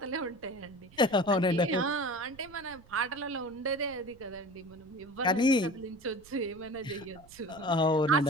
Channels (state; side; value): noise; right; rumble, 25 dB below the sound